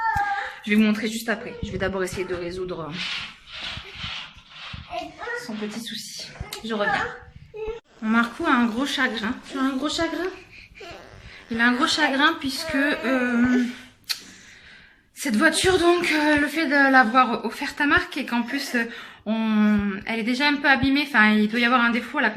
Je vais vous montrer juste après. Je vais d'abord essayer de résoudre son petit souci. Je reviens. Mon Marco a un gros chagrin. Tu as un gros chagrin? Il a un gros chagrin puisque cette voiture, donc, le fait de l'avoir offerte à Marc et qu'en plus, elle est déjà un peu abîmée. Enfin, il doit y avoir un défaut à la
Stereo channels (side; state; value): both; identical; correlation 1.00